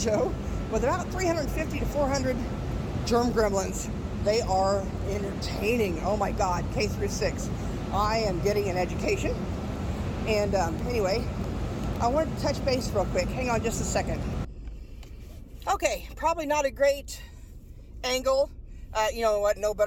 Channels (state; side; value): identical; both; correlation 1.00